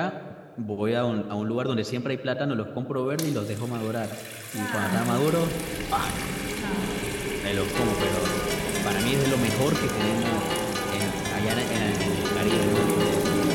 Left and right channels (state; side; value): identical; both; correlation 1.00